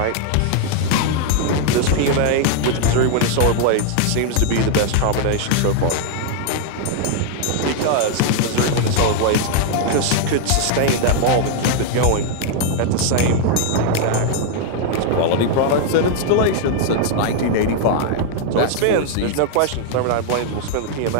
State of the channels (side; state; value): both; different; correlation 0.00